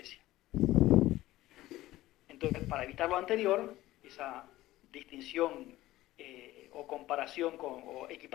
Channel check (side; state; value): right; quieter; 16.4 dB